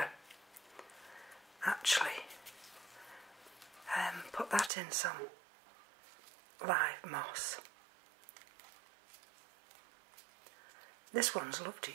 actually put that in some live moss. This one's loved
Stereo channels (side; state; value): left; drops out; at 4.7 s